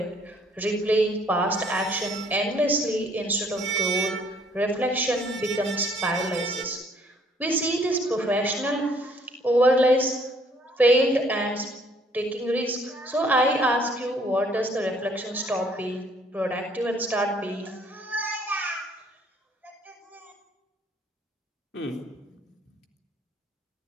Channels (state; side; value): normal; both; correlation 0.62